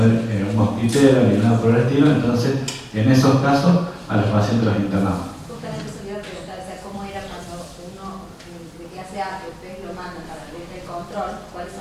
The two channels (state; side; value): identical; both; correlation 1.00